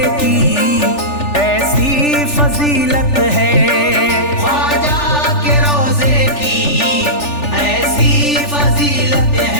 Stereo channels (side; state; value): right; late; 3.4 ms